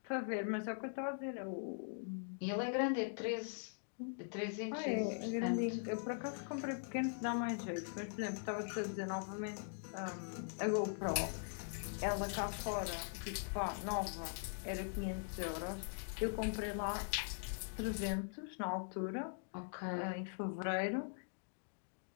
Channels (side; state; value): right; silent; digital silence